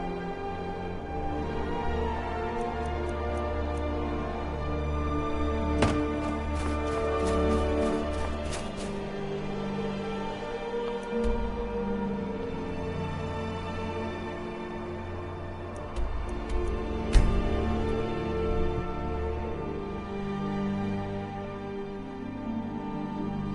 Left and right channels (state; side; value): identical; both; correlation 1.00